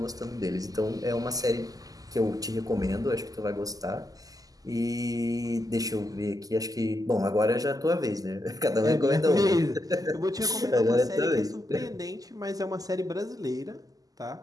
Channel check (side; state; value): left; late; 0.17 ms